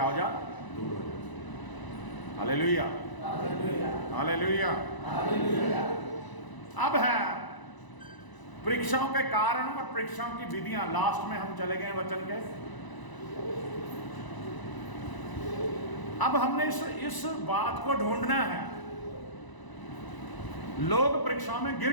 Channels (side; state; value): right; late; 1.0 ms